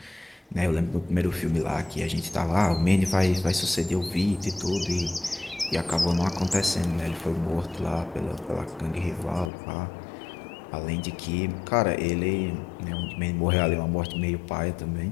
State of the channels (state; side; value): drops out; right; at 9.5 s